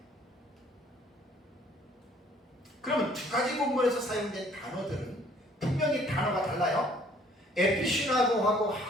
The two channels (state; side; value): normal; both; correlation 0.59